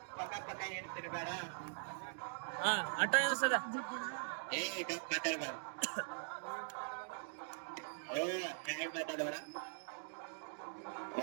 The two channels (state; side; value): silent; left; digital silence